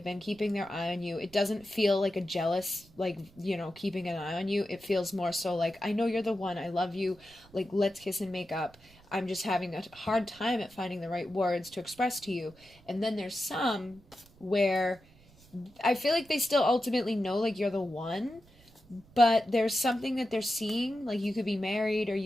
been keeping their eye on you. It doesn't feel like a jealous, like, you know, keeping an eye on you. It feels more so like, I know you're the one. I love you. Like, let's kiss and make up. I'm just having a hard time at finding the right words to express to you. And then there's some where I feel like they still ultimately know, like, you're the one, but there's something that they're seeing, like you could be married, or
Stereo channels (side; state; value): right; noise; rumble, 27 dB below the sound